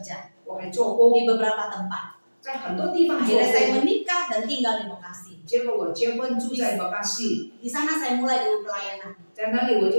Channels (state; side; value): inverted; both; correlation -1.00